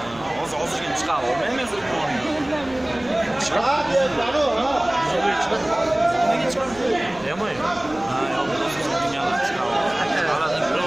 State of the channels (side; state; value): right; noise; hum, 22 dB below the sound